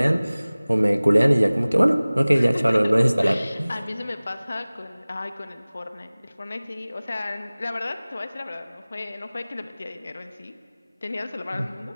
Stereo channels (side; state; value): both; inverted; correlation -0.99